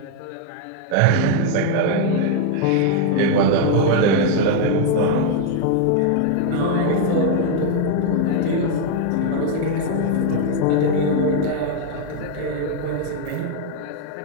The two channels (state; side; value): different; both; correlation 0.00